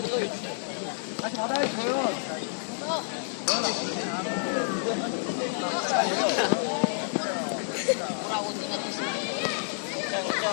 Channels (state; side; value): silent; right; digital silence